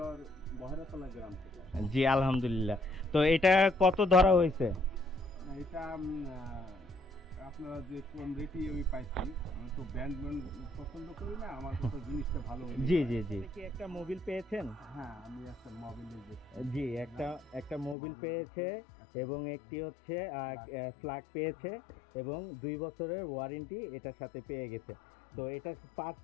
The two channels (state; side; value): drops out; right; at 17.9 s